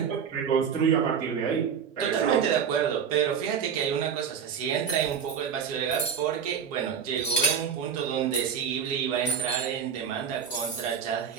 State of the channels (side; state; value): left; quieter; 7.3 dB